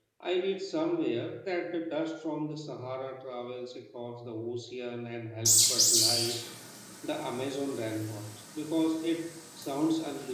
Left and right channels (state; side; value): identical; both; correlation 1.00